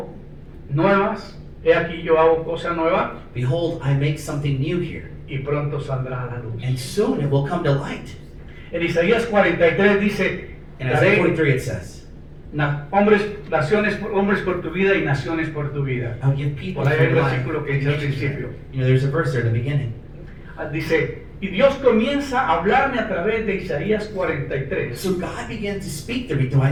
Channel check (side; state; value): both; identical; correlation 1.00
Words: nuevas. He aquí yo hago cosa nueva. Behold, I make something new here. Y pronto saldrá a la luz. And soon it will come to light. En Isaías 43 dice, In Isaiah daré 43 it says, hombres por tu vida y naciones por tu vida. I'll give people Por ahí for hay un your life. versículo que dice al principio. There's a verse there at the beginning. Dice, y Dios comienza a hablarme a través de Isaías 43 So God began to speak to me through